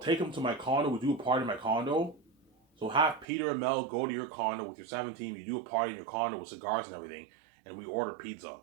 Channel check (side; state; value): left; drops out; at 3.2 s